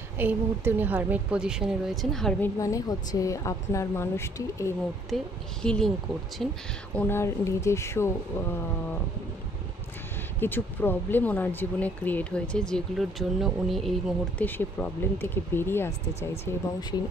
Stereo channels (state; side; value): normal; both; correlation 0.62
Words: এই মুহূর্তে উনি হারমিট পজিশনে রয়েছেন। হারমিট মানে হচ্ছে আপনার মানুষটি এই মুহূর্তে হিলিং করছেন। ওনার নিজস্ব কিছু প্রবলেম ওনার জীবনে ক্রিয়েট হয়েছে, যেগুলোর জন্য উনি এই মুহূর্তে সে প্রবলেম থেকে বেরিয়ে আসতে চাইছে এবং